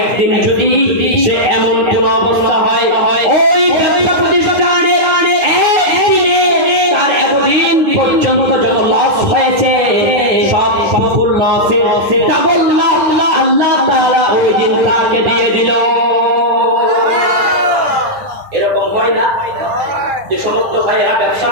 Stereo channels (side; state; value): left; late; 9.8 ms